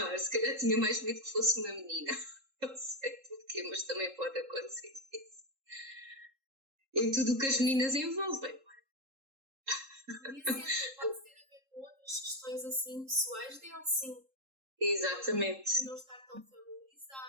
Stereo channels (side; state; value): left; late; 3.7 ms